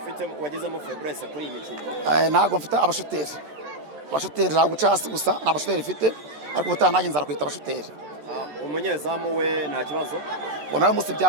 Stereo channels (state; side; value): late; left; 13 ms